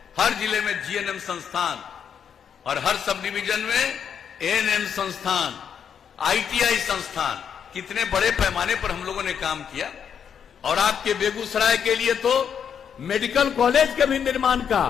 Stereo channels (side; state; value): right; quieter; 7.8 dB